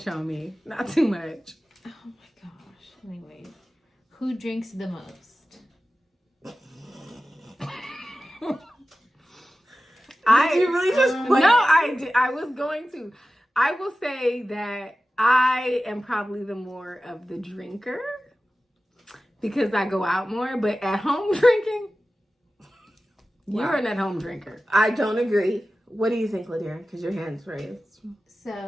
on me. Not too much. Oh my gosh. Anyway, who drinks the most? Did you really just put No, I did. I was going to. I will say that I am probably the more of the drinker because I go out more. But at home drinking, you're Wow. an at-home drinker. I don't agree. What do you think, Ladira? Because your hand's raised.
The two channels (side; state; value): both; normal; correlation 0.95